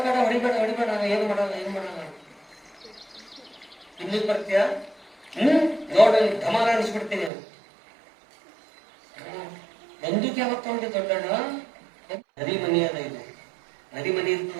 ಬೇಡ ಹೊಡಿಬೇಡ ಏನು ಮಾಡಲ್ಲ ತಿನ್ಲಿಕ್ಕೆ ಬರ್ತೀಯ, ನೋಡಿ ಧಮಾರ ಅನಿಸ್ಬಿಡ್ತೀನಿ. ಬಂದೂಕ್ ಯಾವತ್ತು ತಗೊಂಡಿ ದೊಡ್ಡಣ್ಣ? ನರಿ ಮನಿ ಅದ ಇದು, ನರಿ ಮನಿ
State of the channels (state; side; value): drops out; left; at 7.3 s